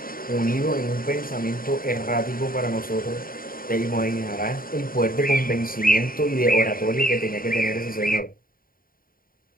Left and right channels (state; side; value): late; right; 0.41 ms